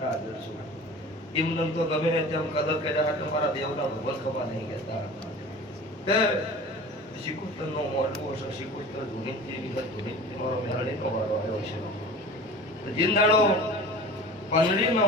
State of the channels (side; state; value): both; normal; correlation 0.39